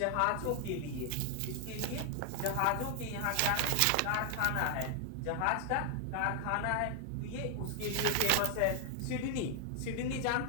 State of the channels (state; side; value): different; both; correlation 0.00